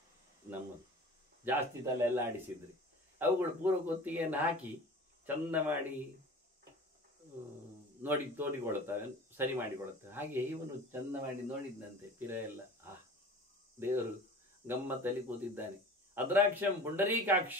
ನಮ್ಮದು ಜಾಸ್ತಿ ತಲೆ ಎಲ್ಲ ಆಡಿಸಿದ್ರಿ ಅವುಗಳು ಪೂರ್ವ ಕೊತ್ತಿಗೆಯನ್ನು ಹಾಕಿ ಚಂದ ಮಾಡಿ ತೋಡಿಕೊಳ್ಳುತ್ತವೆ, ಸರಿ ಮಾಡಿಕೊಳ್ಳುತ್ತವೆ. ಹಾಗೆ ಇವನು ಚಂದ ಮಾಡಿ ನೋಡಿದ್ದಂತೆ ಪಿರ ಎಲ್ಲ. ದೇವರು ಗಮ್ಮತ್ತಲ್ಲಿ ಕೂತಿದ್ದಾನೆ. ಅದ್ರಾಕ್ಷಂ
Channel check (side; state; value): both; normal; correlation 0.40